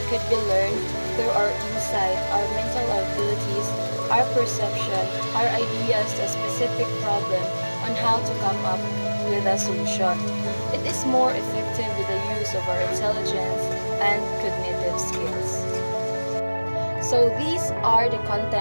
could be learned through our insight, our mental abilities, our perception, our ideas to a specific problem on how to come up with a solution. It is more effective with the use of our intelligence and cognitive skills. So these are the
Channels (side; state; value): both; inverted; correlation -1.00